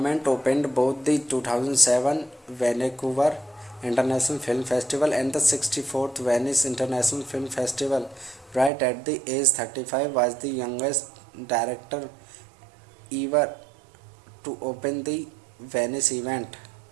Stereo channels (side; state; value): left; drops out; at 8.7 s